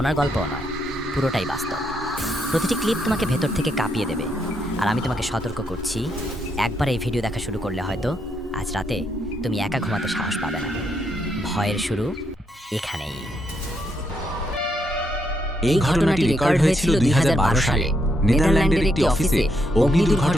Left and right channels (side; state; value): both; normal; correlation 0.78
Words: গল্পও নয়, পুরোটাই বাস্তব। প্রতিটি ক্লিপ তোমাকে ভেতর থেকে কাঁপিয়ে দেবে। আর আমি তোমাকে সতর্ক করছি, একবার এই ভিডিও দেখা শুরু করলে হয়তো আজ রাতে তুমি একা ঘুমাতে সাহস পাবে না। ভয়ের শুরু এখানেই। এই ঘটনাটি রেকর্ড হয়েছিল 2012 সালে নেদারল্যান্ডের একটি অফিসে। অগ্নি